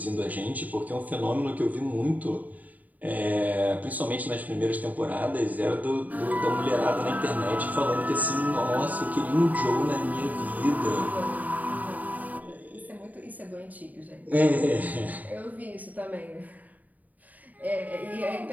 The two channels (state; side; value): late; left; 0.077 ms